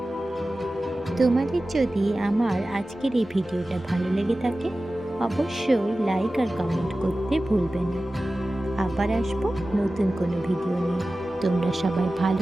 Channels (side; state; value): both; normal; correlation 0.96